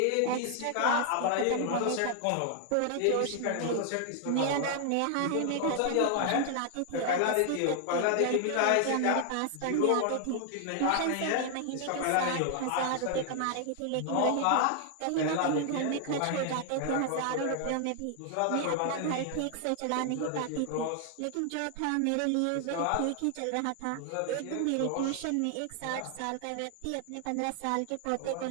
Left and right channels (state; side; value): different; both; correlation 0.00